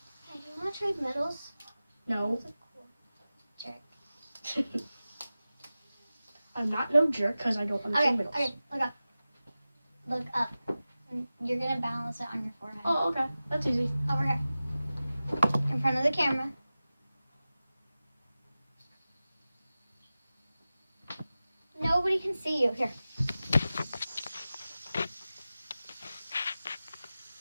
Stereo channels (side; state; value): both; inverted; correlation -0.95